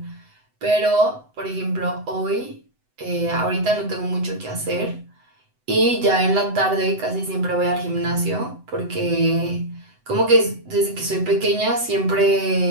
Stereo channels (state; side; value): late; left; 7.9 ms